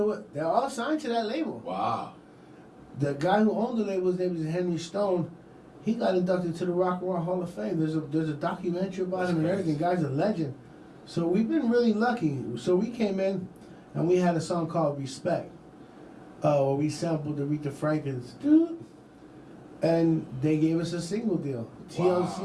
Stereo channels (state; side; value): identical; both; correlation 1.00